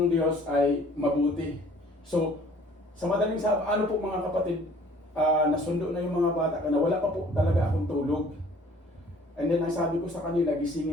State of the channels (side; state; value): both; normal; correlation 0.54